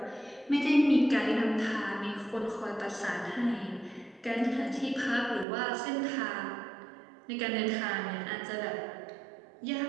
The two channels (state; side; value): drops out; left; at 5.5 s